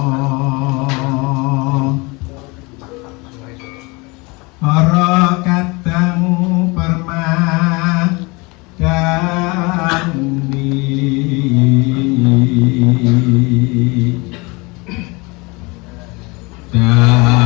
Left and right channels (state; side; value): quieter; right; 26.5 dB